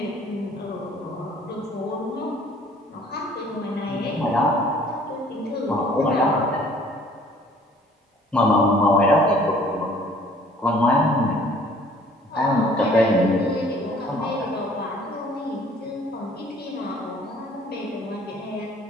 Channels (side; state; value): both; normal; correlation 0.55